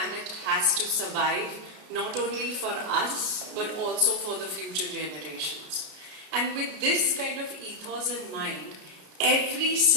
has to survive not only for us but also for the future generations. And with this kind of ethos in mind, every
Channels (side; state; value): left; late; 33 ms